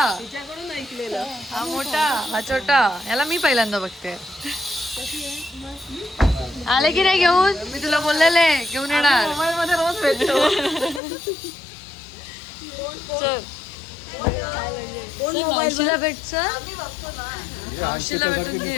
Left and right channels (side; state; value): right; drops out; at 11.0 s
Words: तिच्याकडून ऐकलेलं. हा मोठा, हा छोटा. याला मी पहिल्यांदा बघते. आले की नाही घेऊन? मी तुला बोललेले घेऊन येणार. मोबाईल मध्ये रोज भेटतो. चल चल मावशीला भेट चल मावशीला भेटून